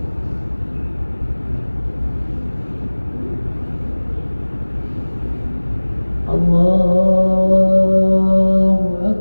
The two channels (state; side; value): inverted; both; correlation -1.00